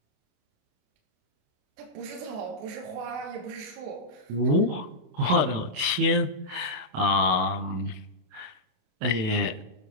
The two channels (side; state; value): left; late; 28 ms